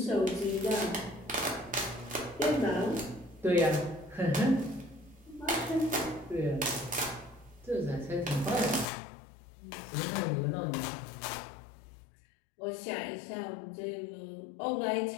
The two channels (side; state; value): right; drops out; at 8.8 s